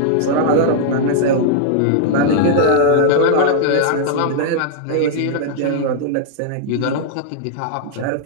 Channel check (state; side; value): different; both; correlation -0.01